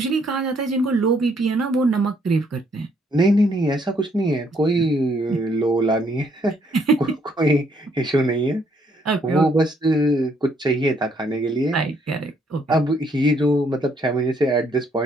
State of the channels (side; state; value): both; normal; correlation 0.69